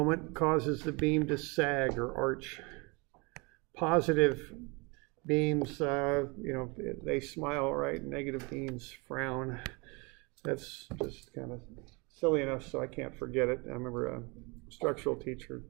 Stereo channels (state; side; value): quieter; left; 28.5 dB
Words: causes the beam to sag or arch. Positive beams, they smile, right? Negative beams frown. That's just kind of silly enough so I can't forget it. I remember a structural teacher